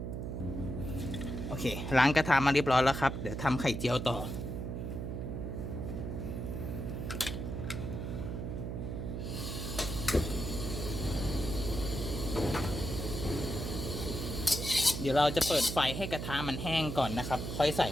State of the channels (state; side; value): noise; right; hum, 4 dB below the sound